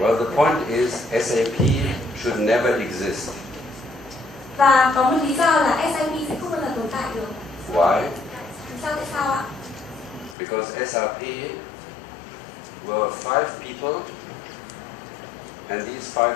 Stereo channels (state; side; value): drops out; right; at 10.4 s